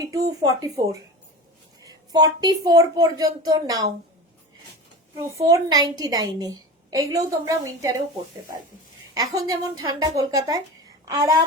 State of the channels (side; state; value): both; normal; correlation 0.30